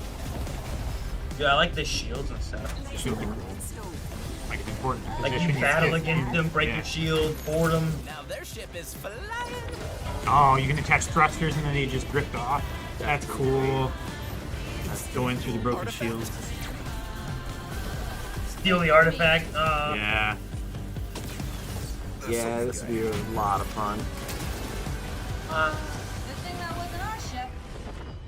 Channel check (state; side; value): identical; both; correlation 1.00